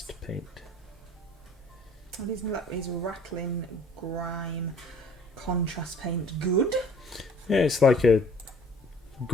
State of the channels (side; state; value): both; normal; correlation 0.54